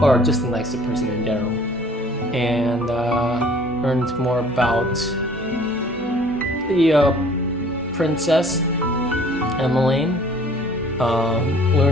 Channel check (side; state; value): both; normal; correlation 0.53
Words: or just a nicer person in general, and learned more about the princess Emmeline.